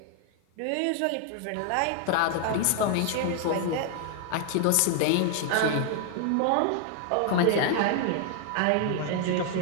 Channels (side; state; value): both; different; correlation 0.00